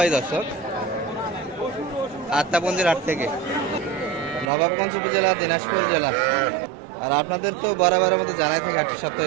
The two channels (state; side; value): drops out; left; at 4.5 s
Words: দর্শক আত্মাপঞ্জির হাট থেকে, নবাবগঞ্জ উপজেলা, দিনাজপুর জেলা। আর আপনাদের তো বরাবরের মতো জানাই থাকে হাটটি